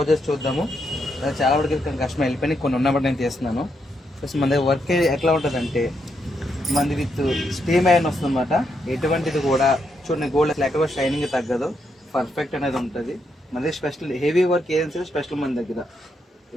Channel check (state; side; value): normal; both; correlation 0.80